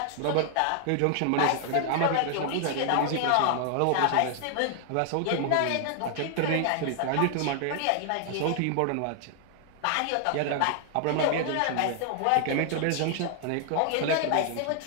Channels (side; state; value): both; different; correlation 0.00